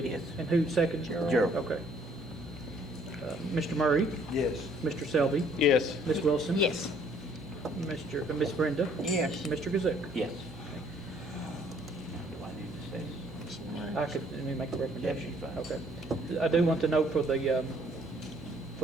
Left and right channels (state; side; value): normal; both; correlation 0.62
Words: Yes. And who seconded? Gerald. Okay. Mr. Murray? Yes. Mr. Selby? Yes. Ms. Wilson? Yes. Ms. Brenda? Yes. Mr. Kazuk? Yes. Do I need to say? I could, let me make a recommendation. Yes, Okay. I do want to note for the